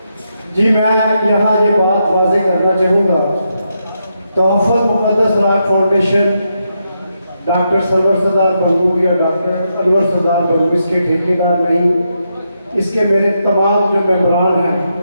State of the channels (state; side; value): inverted; both; correlation -0.82